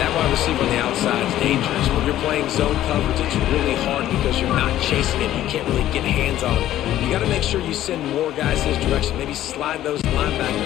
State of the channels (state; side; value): quieter; right; 13.1 dB